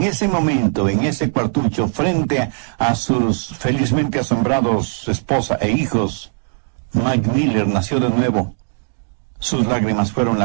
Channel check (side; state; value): left; silent; digital silence